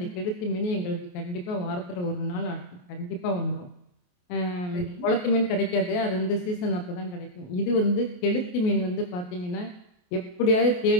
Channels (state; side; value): late; right; 28 ms